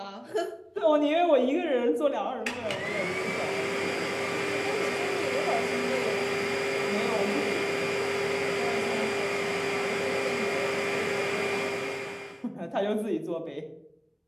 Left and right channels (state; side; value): identical; both; correlation 1.00